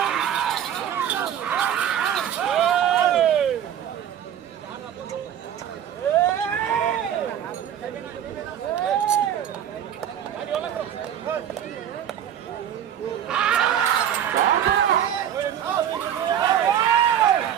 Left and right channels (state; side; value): quieter; left; 9.9 dB